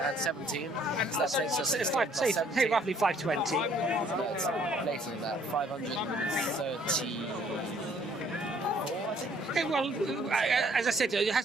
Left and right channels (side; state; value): both; normal; correlation 0.61